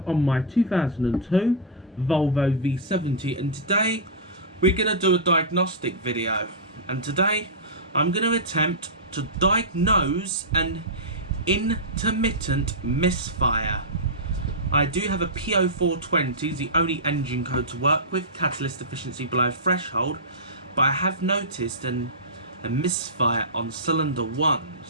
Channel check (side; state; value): both; normal; correlation -0.14